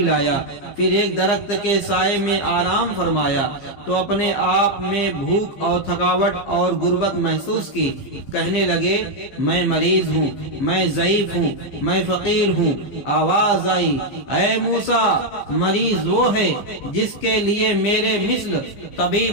پھر ایک درخت کے سائے میں آرام فرمایا، تو اپنے آپ میں بھوک اور تھکاوٹ اور غربت محسوس کی۔ کہنے لگے، میں مریض ہوں، میں ضعیف ہوں، میں فقیر ہوں۔ آواز آئی، اے موسیٰ، مریض وہ ہے جس کے لیے میرے مثل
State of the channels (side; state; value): right; late; 15 ms